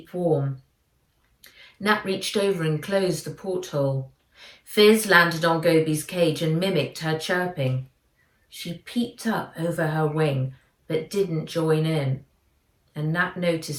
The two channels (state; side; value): identical; both; correlation 1.00